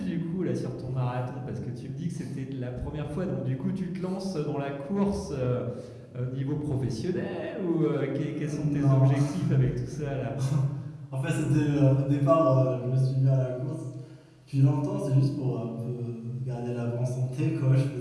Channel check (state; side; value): identical; both; correlation 1.00